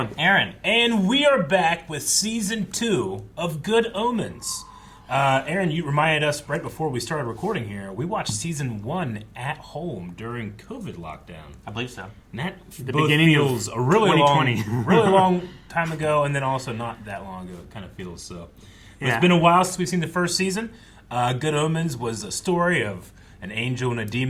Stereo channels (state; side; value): identical; both; correlation 1.00